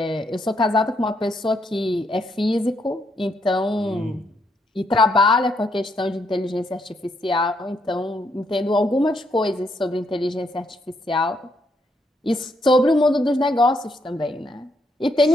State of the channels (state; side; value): normal; both; correlation 0.75